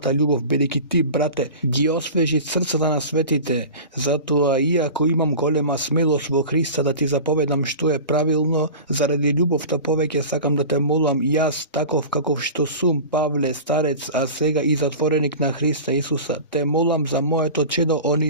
љубов, бидејќи ти, брате, ги освежи срцата на светите. Затоа, иако имам голема смелост во Христа да ти заповедам што е правилно, заради љубовта повеќе сакам да те молам јас, таков каков што сум, Павле, старец, а сега и затвореник на Христа Исуса, те молам за моето чедо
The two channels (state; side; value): inverted; both; correlation -0.34